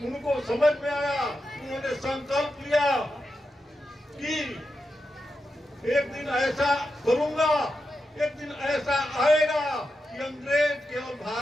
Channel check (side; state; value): both; normal; correlation 0.88